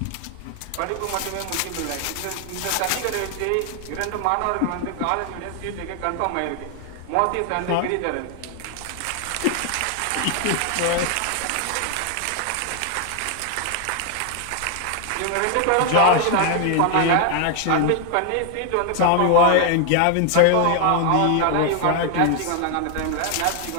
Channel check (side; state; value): both; different; correlation 0.00